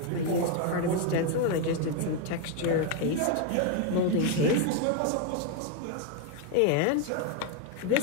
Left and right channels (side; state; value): both; different; correlation 0.01